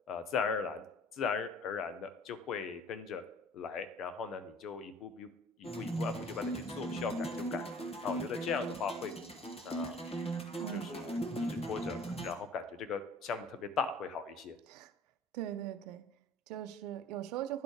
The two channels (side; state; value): both; normal; correlation 0.49